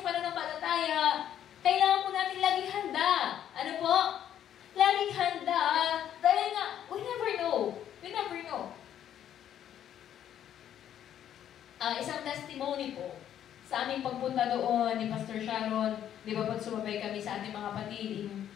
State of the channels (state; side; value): quieter; right; 10.4 dB